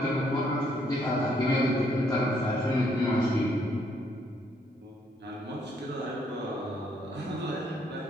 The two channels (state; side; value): normal; both; correlation 0.70